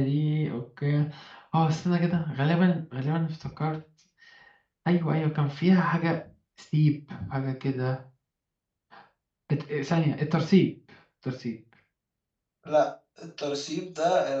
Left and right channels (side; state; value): both; identical; correlation 1.00